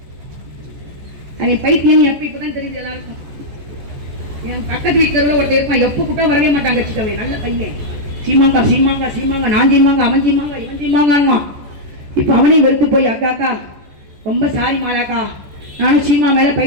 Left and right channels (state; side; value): late; left; 14 ms